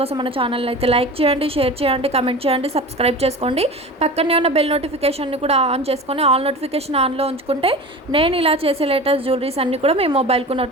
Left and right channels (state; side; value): normal; both; correlation 0.33